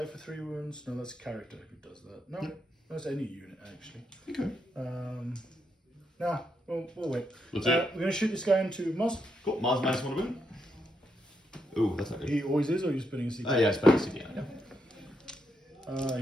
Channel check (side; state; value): both; normal; correlation 0.80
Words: for 3 wounds. No, that's a character who does that. No, that's any unit actually. Okay. Nah, we'll wait. Let's see. We're gonna shoot this guy into Moz. Cool. Maz -1 wound. Ooh, that's not good. He always is, or are you spinning a CP? Oh yeah, I spent a CP on it. Yeah.